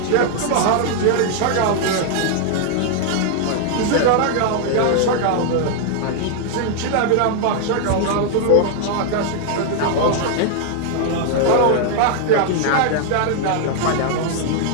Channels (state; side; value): different; both; correlation 0.00